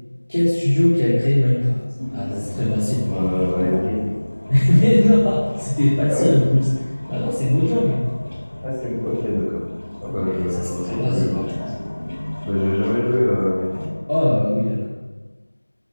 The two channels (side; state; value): both; inverted; correlation -1.00